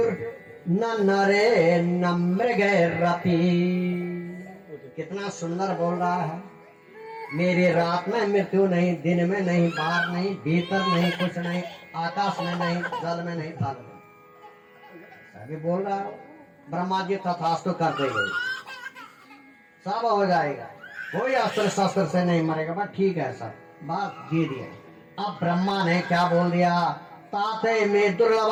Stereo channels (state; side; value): identical; both; correlation 1.00